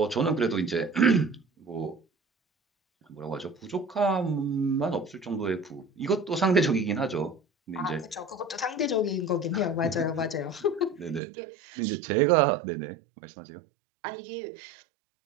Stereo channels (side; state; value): left; drops out; at 11.2 s